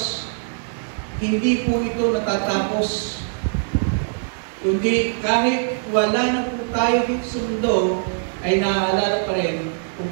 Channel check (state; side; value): silent; left; 64 dB below the other